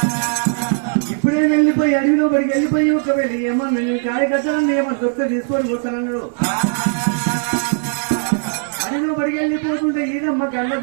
ఇప్పుడు ఇప్పుడే వెళ్ళిపోయి అడవిలో పడికి వెళ్ళిపోయి ఒకవేళ ఏమన్నా నేను కాయ కట్టాలని ఏమన్నా దొరికితే తీసుకొని పోతానన్నాడు. అడవిలో పడికి వెళ్ళిపోతుంటే ఈదమ్మ కళ్ళ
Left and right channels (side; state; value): left; silent; 63 dB below the other